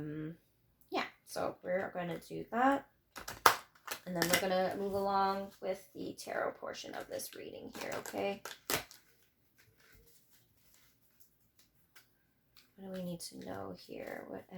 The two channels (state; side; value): identical; both; correlation 1.00